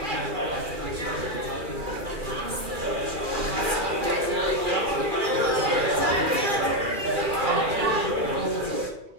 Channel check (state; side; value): late; left; 2.4 ms